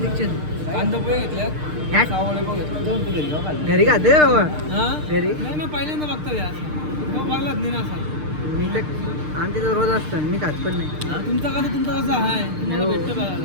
कांदा पोहे घेतल्या ह्याट? सावळे पण घेतले. दोन तू घरी खाल्ले. घरी खाते का बाबा? हा घरी नाही ना पहिल्यांदा बघतो यार बघलाच नाही ना असा. मी तर आमच्या तर रोज असतं मी खात पण नाही. तुमचा कसा आहे तुम्हाला हो. भेटतो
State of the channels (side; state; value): left; late; 6.6 ms